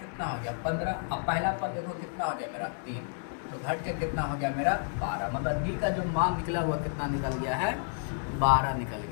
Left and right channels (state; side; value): silent; right; digital silence